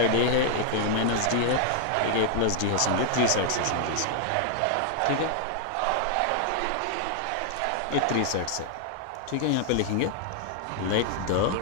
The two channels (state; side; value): different; both; correlation 0.00